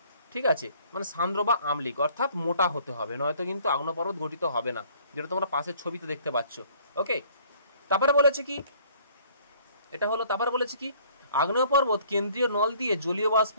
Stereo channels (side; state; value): both; inverted; correlation -0.58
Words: ঠিক আছে, মানে সান্দ্র বা আমলিক, অর্থাৎ মোটা হতে হবে, নয়তো কিন্তু আগ্নেয় পর্বত গঠিত হবে না, যেটা তোমরা পাশের ছবিতে দেখতে পাচ্ছ। ওকে, তারপরে বলেছে কি, এটা হলো তারপরে বলেছে কি, আগ্নেয় পর্বত কেন্দ্রীয় নল দিয়ে জলীয় বাষ্প,